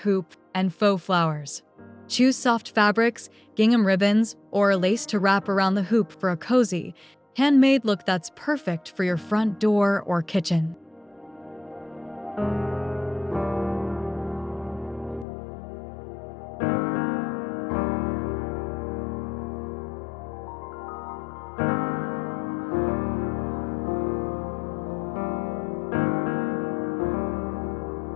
and faux flowers. Choose soft fabrics, gingham ribbons, or lace to wrap around the hoop for a cozy, handmade look that's perfect for your front door or kitchen.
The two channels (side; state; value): right; drops out; at 15.2 s